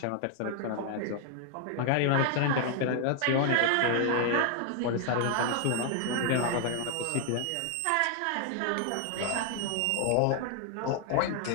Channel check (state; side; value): different; both; correlation 0.00